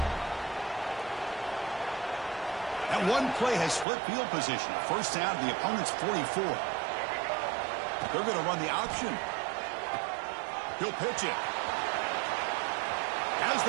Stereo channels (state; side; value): drops out; left; at 3.9 s